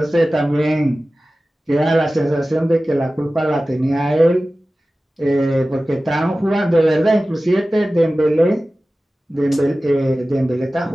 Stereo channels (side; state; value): both; normal; correlation 0.96